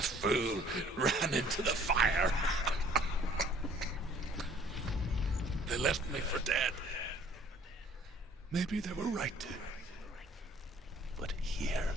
fool ran into the fire. They left me for dead. Maybe they were right to. But here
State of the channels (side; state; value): both; normal; correlation 0.56